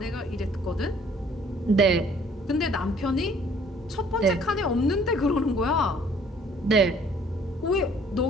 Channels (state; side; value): normal; both; correlation 0.58